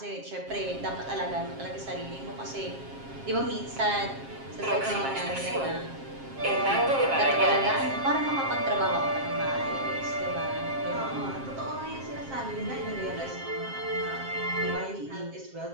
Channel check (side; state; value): left; late; 7.5 ms